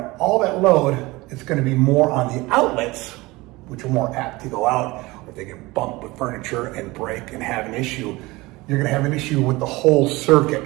all that load. It's going to be more on the outlets, which are more apt to go out, or if they get bumped with furniture and break and have an issue, you're going to have an issue with the whole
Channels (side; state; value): left; quieter; 21.5 dB